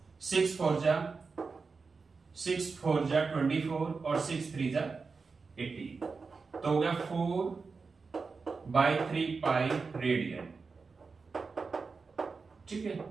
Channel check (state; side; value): quieter; left; 4.6 dB